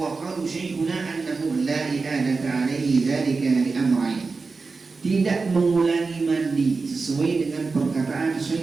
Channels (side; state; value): left; quieter; 4.3 dB